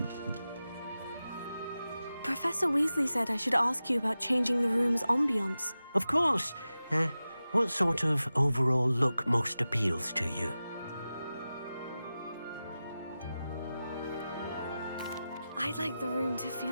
Professor Weasley said I should ask you about changing the room's ambiance. Of course. What sort of overall look most appeals to you? I'd like the room to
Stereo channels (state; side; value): inverted; both; correlation -0.94